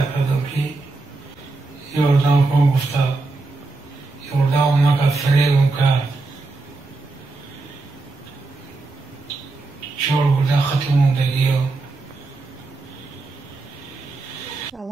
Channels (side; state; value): left; quieter; 3.4 dB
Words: кардам ки ёрдам кун, гуфта ёрдамам накард, фиребам кард. 4 бурда хати мондагиё.